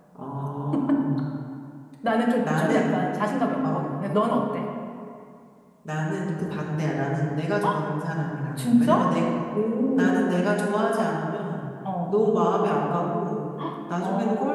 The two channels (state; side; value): identical; both; correlation 1.00